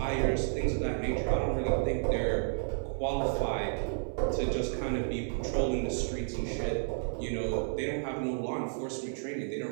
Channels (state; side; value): silent; left; 57 dB below the other